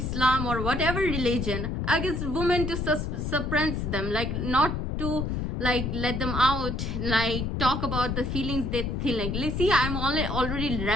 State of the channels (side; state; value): left; noise; rumble, 2 dB below the sound